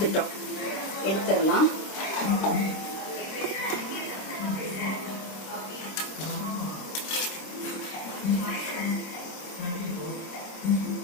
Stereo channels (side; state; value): right; late; 26 ms